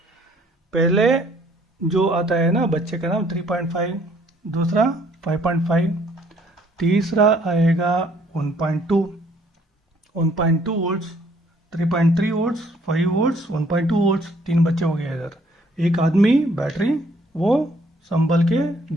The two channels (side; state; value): both; normal; correlation 0.63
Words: पहले जो आता है ना बच्चे का नाम 3.5, दूसरा 5.5, तीसरा आएगा 1.2, 1.2 वोल्ट्स, 3.3 वोल्ट्स, 5 वोल्ट्स, 1.2 वोल्ट्स। तीन बच्चे हो गए इधर। एक आदमी बैटरी, वो संभल के